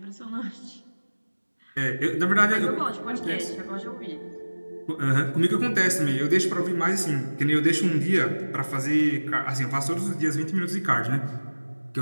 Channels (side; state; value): both; inverted; correlation -1.00